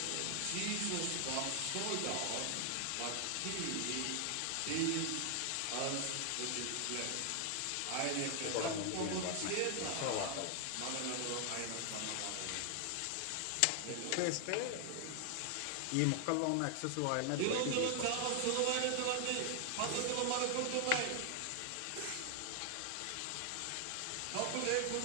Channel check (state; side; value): different; both; correlation 0.00